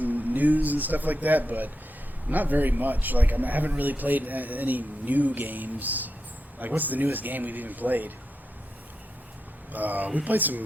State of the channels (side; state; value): both; normal; correlation 0.87